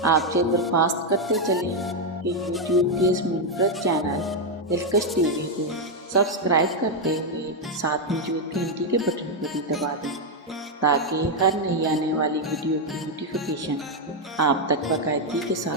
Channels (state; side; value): normal; both; correlation 0.02